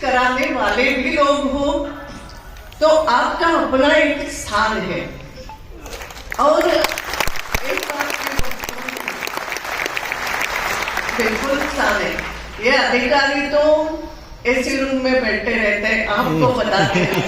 कराने वाले भी लोग हो, तो आपका अपना एक स्थान है। और एक बात बिल्कुल स्थान है, ये अधिकारी तो ऐसे रूम में बैठे रहते हैं, आपको बताते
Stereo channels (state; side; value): identical; both; correlation 1.00